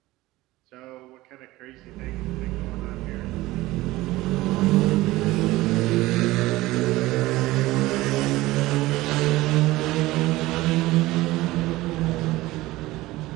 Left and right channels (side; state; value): left; quieter; 18.4 dB